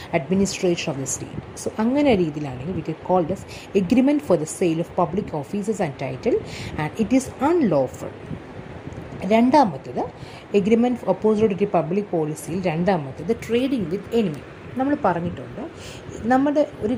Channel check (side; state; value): both; identical; correlation 1.00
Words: administration of the state. So അങ്ങനെ രീതിയിലാണെങ്കിൽ we can call this agreement for the sale of public offices and title, and it is unlawful. രണ്ടാമത്തേത് agreement opposite to public പോളിസിയിൽ രണ്ടാമത്തേത് trading with enemy. നമ്മൾ പറഞ്ഞിട്ടുണ്ട്, നമ്മുടെ ഒരു